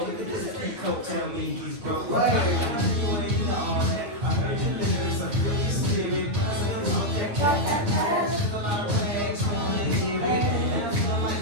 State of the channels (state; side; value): late; left; 8.9 ms